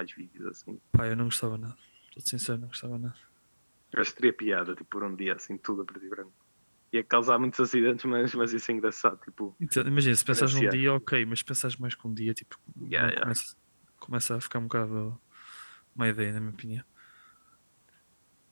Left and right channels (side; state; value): both; inverted; correlation -1.00